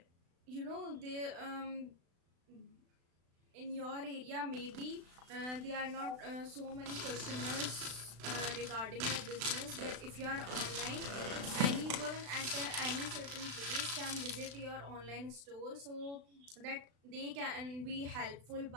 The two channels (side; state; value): left; late; 36 ms